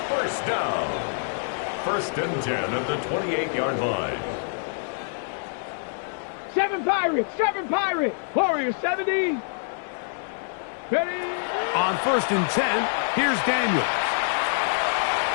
first down. First and 10 at the 28-yard line. 7 Pirates. 7 Pirates. Warriors 70. Ready. On first and 10, here's Daniels.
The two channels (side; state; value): right; silent; digital silence